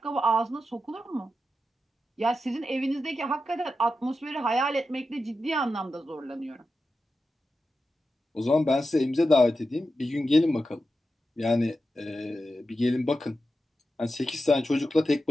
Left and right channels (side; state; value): both; normal; correlation 0.90